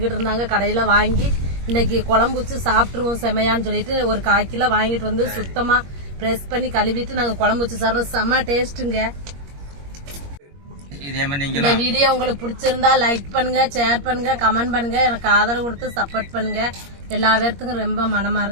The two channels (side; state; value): left; late; 21 ms